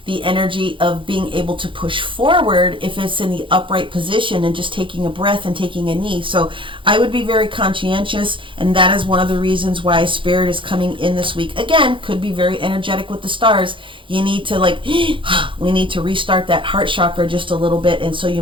the energy of being able to push forward if it's in the upright position and just taking a breath and taking a knee. So I would be very conscientious, and that is one of the reasons why Spirit is coming in this week. Again, could be very energetic with the stars. You need to we need to restart that heart chakra just a little bit, and so you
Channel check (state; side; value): late; left; 0.25 ms